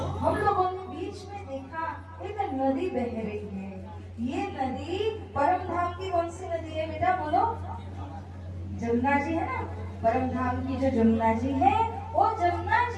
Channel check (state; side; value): identical; both; correlation 1.00